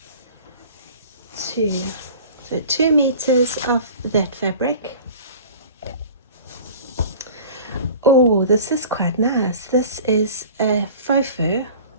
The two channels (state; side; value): inverted; both; correlation -0.42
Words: 2. So 2 meters of that fabric. Oh, this is quite nice. This is a faux fur.